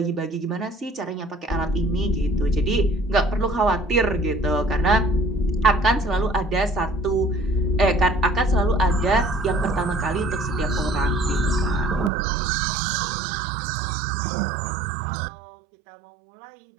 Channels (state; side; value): drops out; left; at 12.1 s